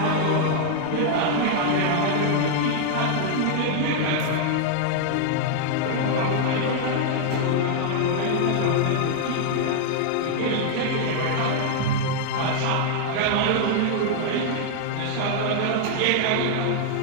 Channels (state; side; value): different; both; correlation -0.01